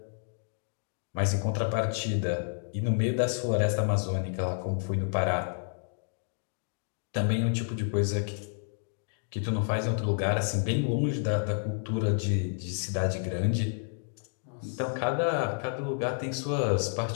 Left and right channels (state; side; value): silent; right; digital silence